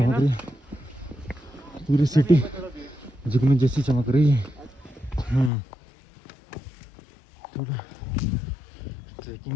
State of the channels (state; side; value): drops out; right; at 5.5 s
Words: रही है, पूरी सिटी जुगनू जैसी चमक रही है। ठीक है,